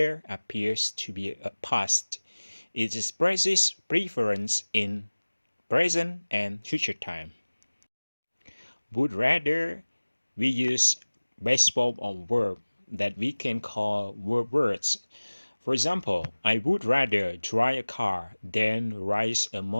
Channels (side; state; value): both; inverted; correlation -1.00